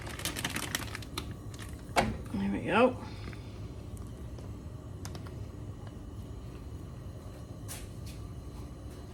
There we go.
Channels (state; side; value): identical; both; correlation 1.00